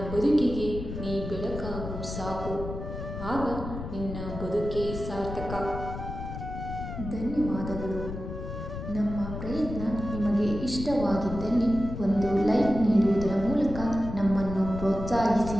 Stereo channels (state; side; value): noise; left; rumble, 8 dB below the sound